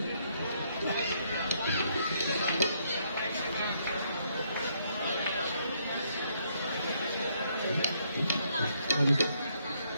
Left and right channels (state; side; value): inverted; both; correlation -0.72